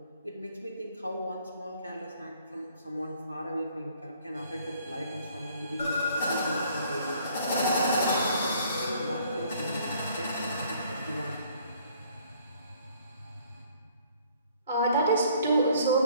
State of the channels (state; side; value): inverted; both; correlation -0.60